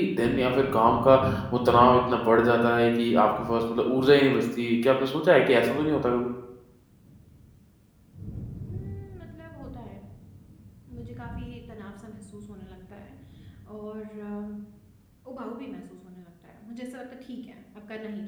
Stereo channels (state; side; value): identical; both; correlation 1.00